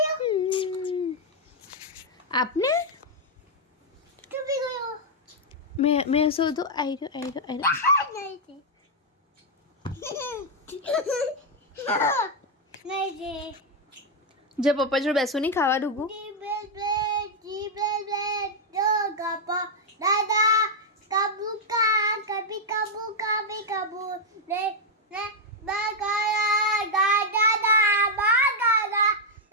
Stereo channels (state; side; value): normal; both; correlation -0.01